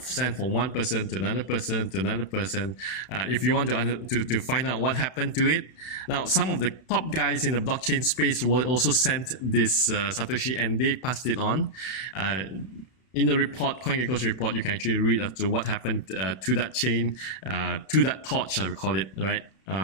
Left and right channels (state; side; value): late; right; 32 ms